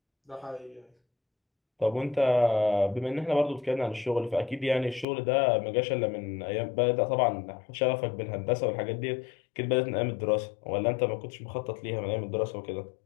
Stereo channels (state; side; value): drops out; right; at 5.1 s